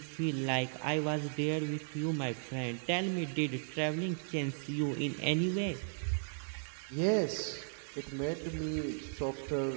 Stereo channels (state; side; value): silent; left; digital silence